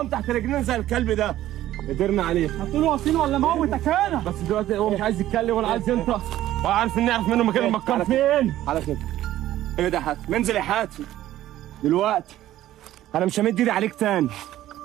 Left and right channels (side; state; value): left; quieter; 13.7 dB